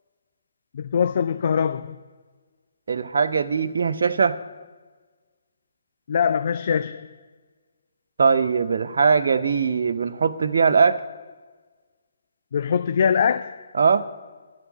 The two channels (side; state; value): both; inverted; correlation -0.77